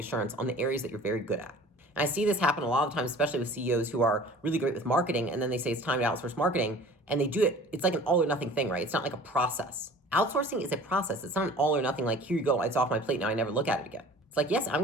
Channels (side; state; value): both; normal; correlation 0.45